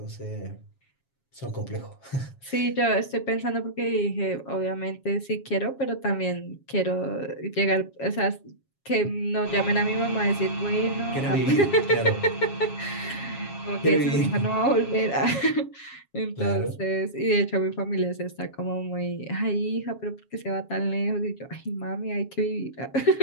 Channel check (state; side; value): late; right; 7.3 ms